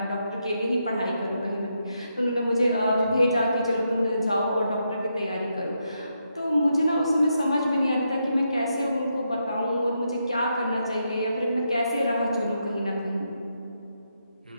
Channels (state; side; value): inverted; both; correlation -0.81